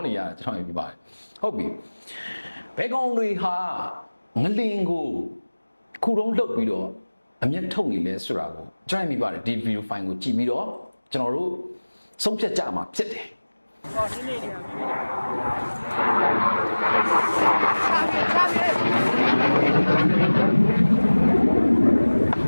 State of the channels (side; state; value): both; inverted; correlation -1.00